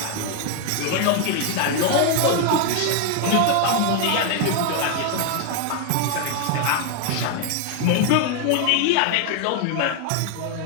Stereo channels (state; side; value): different; both; correlation 0.01